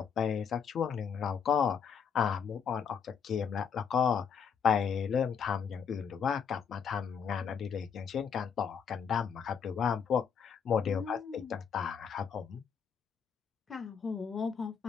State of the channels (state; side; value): quieter; right; 6.9 dB